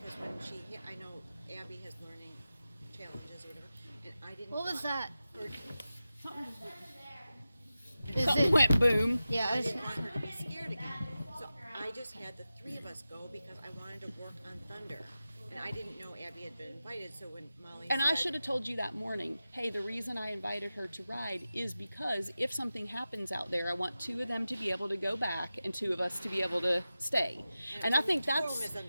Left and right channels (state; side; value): inverted; both; correlation -0.94